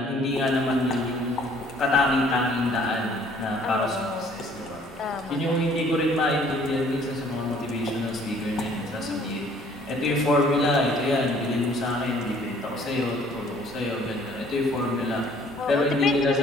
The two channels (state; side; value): normal; both; correlation 0.58